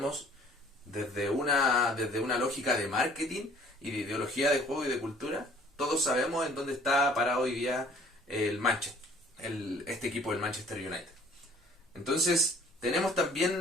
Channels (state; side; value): normal; both; correlation 0.54